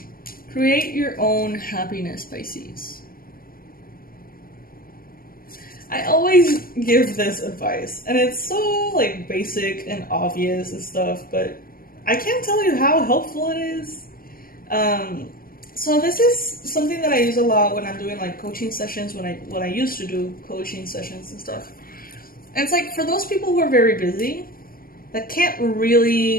Create your own happiness, Pisces. I always give this advice, and it's so like basic and obvious and stuff, but I can't tell you how helpful it is. So this is something that I use a lot when I'm doing like coaching sessions, when I used to do coaching sessions and stuff. And it's like for those people who are very busy, that can't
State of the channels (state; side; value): late; right; 0.42 ms